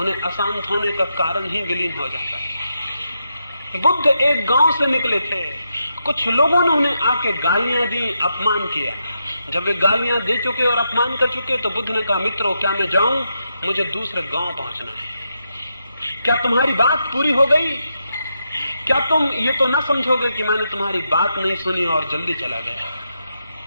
अशांत होने का कारण ही विलीन हो जाता है। बुद्ध एक गांव से निकले थे, कुछ लोगों ने उन्हें आके गालियां दी, अपमान किया। जब वे गालियां दे चुके और अपमान कर चुके तो बुद्ध ने कहा, मित्रों क्या मैं जाऊं? मुझे दूसरे गांव पहुंचना है। क्या तुम्हारी बात पूरी हो गई? क्या तुम ये तो ना समझोगे कि मैंने तुम्हारी बात नहीं सुनी और जल्दी चला गया?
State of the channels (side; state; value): both; inverted; correlation -0.83